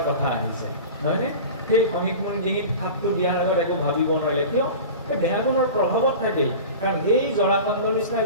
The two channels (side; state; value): both; inverted; correlation -0.34